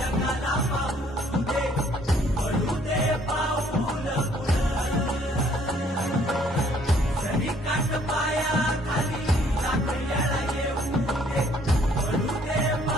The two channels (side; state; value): both; normal; correlation 0.62